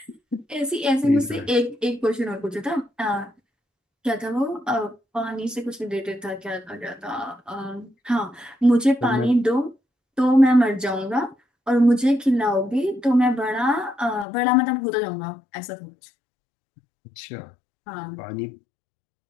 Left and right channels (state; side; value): drops out; right; at 14.2 s